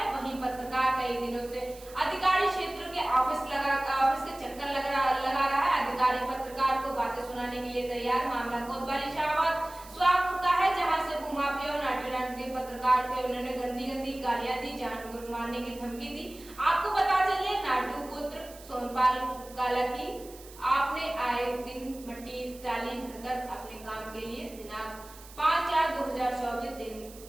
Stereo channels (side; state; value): right; noise; hiss, 20 dB below the sound